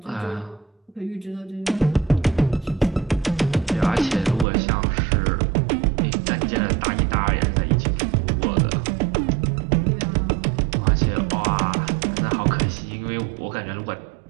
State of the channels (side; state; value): left; drops out; at 4.5 s